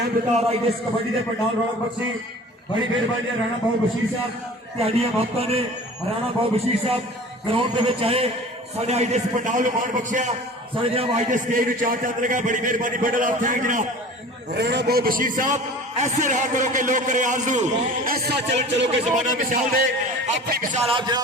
बिता रहा IDS कबड्डी के पंडाल रौनक बख्शी बड़ी मेहरबानी है राणा बाबू बशीर साहब त्याड़ियां भक्तों ने राणा बाबू बशीर साहब ग्राउंड के आए साढ़े IDS पंडाल में मान बख्शिया साढ़े जनाब IDS स्टेज में चार चांद लगा बड़ी मेहरबानी बंडल ऑफ थैंक जनाब राणा बाबू बशीर साहब ऐसे रहा करो के लोग करे आरजू ऐसा चलन चलो के जमाना मिसाल दे अपनी मिसाल आप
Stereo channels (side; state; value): both; normal; correlation 0.41